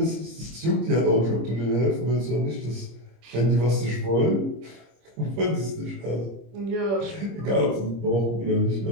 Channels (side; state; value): left; late; 26 ms